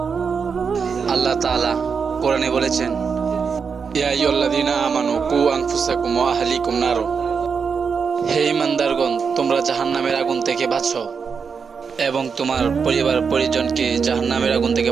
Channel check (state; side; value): quieter; left; 5.9 dB